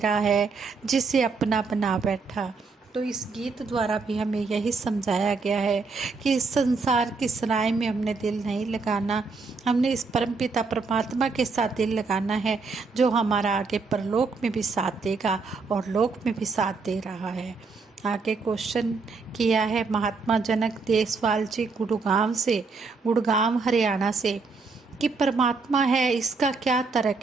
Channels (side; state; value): left; quieter; 4.4 dB